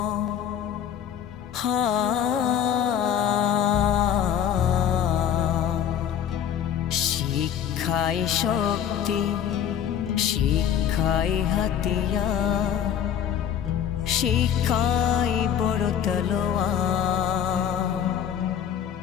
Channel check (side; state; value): right; quieter; 9.2 dB